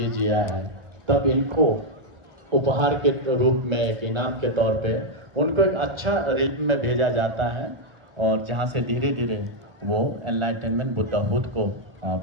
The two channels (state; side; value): late; left; 1.1 ms